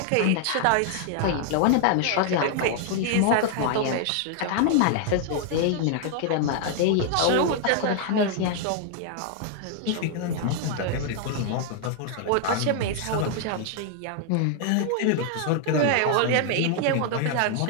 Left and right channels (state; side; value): different; both; correlation 0.00